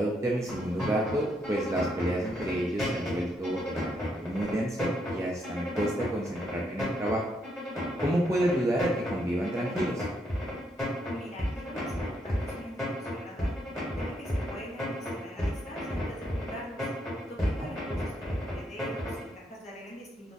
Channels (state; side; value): normal; both; correlation 0.76